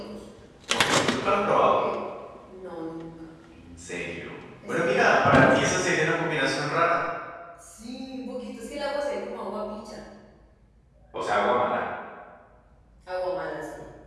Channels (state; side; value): identical; both; correlation 1.00